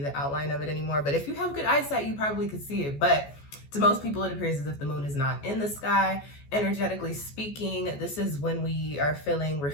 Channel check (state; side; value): late; right; 14 ms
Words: outline of it anymore. But if you have good eyesight, you probably could see it. But to most people, it appears as if the moon is not in the sky. Energetically speaking, this is when we are feeling